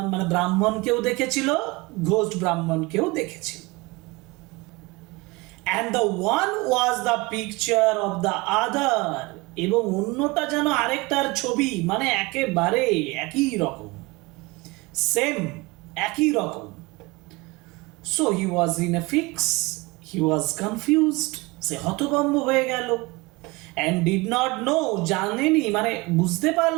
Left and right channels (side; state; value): left; quieter; 23.7 dB